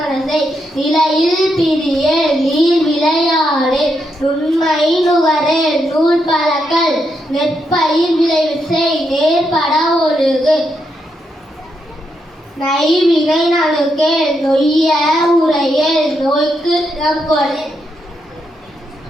நிலையில் பிரியேல், நீர் விளையாடே, நுண்மை நுகரே, நூல் பழக்கல், நெற்பயிர் விளைவு செய், நேர்பட ஒழுகு, நைவினை நணுக்கேல், நொய்ய உரையேல், நோய்க்கு இடம் கொடு,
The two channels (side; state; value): both; normal; correlation 0.81